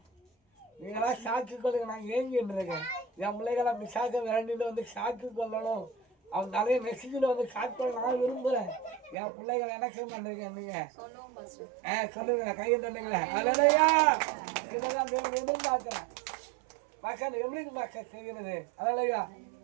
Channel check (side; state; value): left; drops out; at 9.2 s